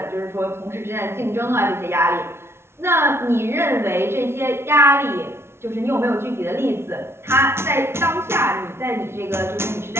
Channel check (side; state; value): left; late; 0.12 ms